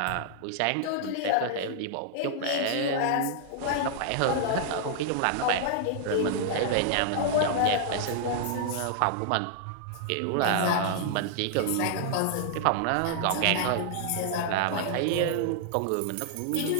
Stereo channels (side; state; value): both; different; correlation -0.01